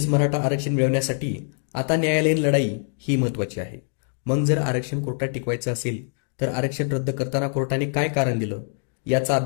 मराठा आरक्षण मिळवण्यासाठी आता न्यायालयीन लढाई ही महत्त्वाची आहे. मग जर आरक्षण कोर्टात टिकवायचं असेल तर आरक्षण रद्द करताना कोर्टाने काय कारण दिलं याचा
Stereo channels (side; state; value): right; silent; digital silence